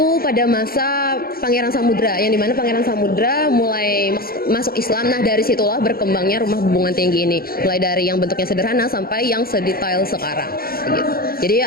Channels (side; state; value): right; late; 0.43 ms